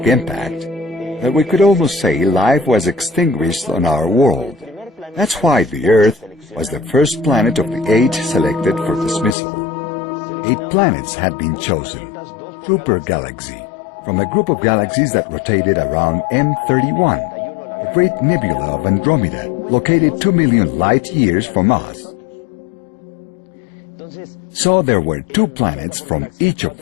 impact that we could almost say life was extinguished on our world. That's why the Earth was the first planet of the 8 selected for dismissal. 8 planets had been chosen, through per galaxy, from a group of galaxies that rotated around M31, a great nebula of Andromeda, located 2 million light-years from us. So there were 2 planets from each of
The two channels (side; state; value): right; drops out; at 9.3 s